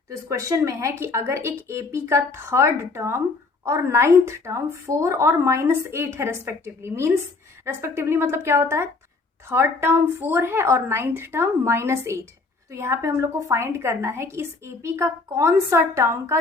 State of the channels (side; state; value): right; quieter; 3.8 dB